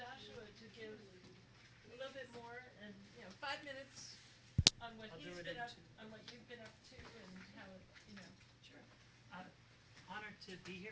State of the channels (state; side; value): identical; both; correlation 1.00